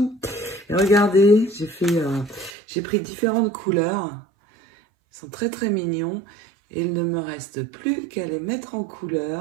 Et regardez, j'ai pris différentes couleurs. Ils sont très très mignons. Et il ne me reste plus qu'à les mettre en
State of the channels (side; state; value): left; drops out; at 2.5 s